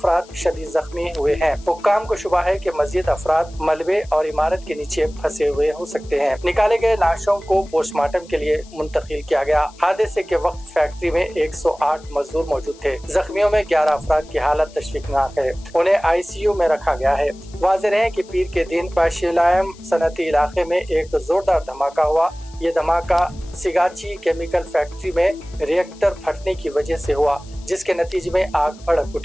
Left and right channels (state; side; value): noise; left; hiss, 24 dB below the sound